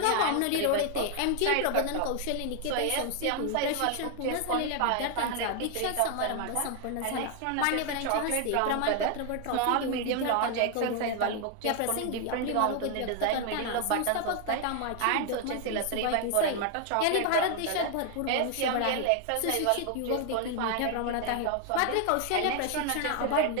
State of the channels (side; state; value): both; different; correlation 0.00